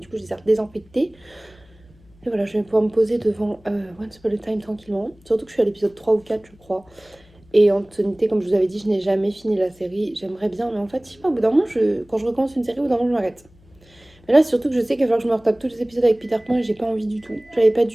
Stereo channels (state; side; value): noise; left; hum, 28 dB below the sound